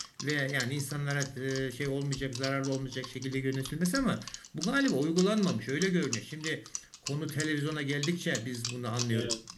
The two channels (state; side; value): identical; both; correlation 1.00